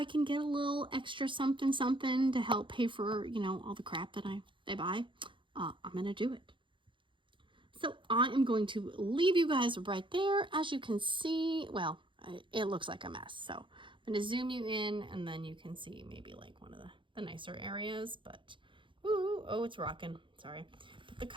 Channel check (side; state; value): left; late; 0.24 ms